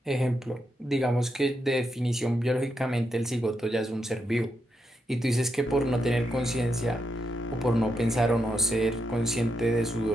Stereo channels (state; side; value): normal; both; correlation 0.83